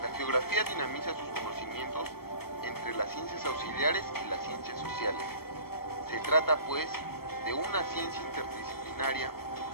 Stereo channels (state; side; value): late; right; 0.94 ms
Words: La geografía dinamiza sus conocimientos entre las ciencias auxiliares y las ciencias sociales. Se trata, pues, de una ciencia interdisciplinaria